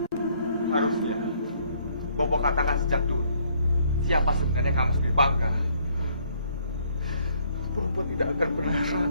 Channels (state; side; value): inverted; both; correlation -0.66